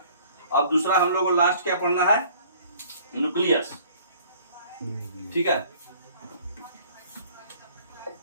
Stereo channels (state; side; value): inverted; both; correlation -0.54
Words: अब दूसरा हम लोग को लास्ट क्या पढ़ना है? न्यूक्लियस, ठीक है।